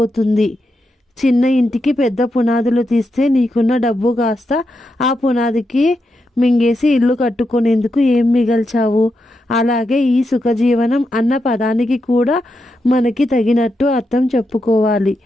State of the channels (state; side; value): normal; both; correlation 0.85